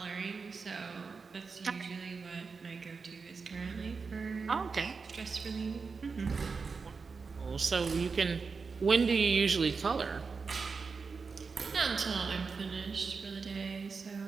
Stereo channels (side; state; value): left; quieter; 4.9 dB